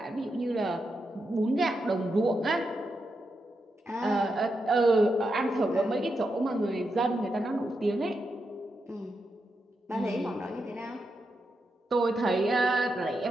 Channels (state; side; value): normal; both; correlation 0.85